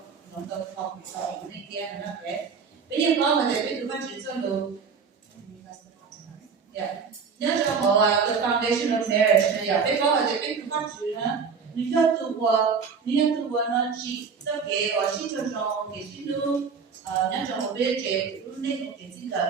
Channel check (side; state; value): left; quieter; 5.7 dB